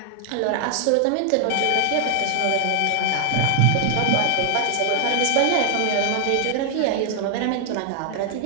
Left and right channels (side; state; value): both; different; correlation 0.00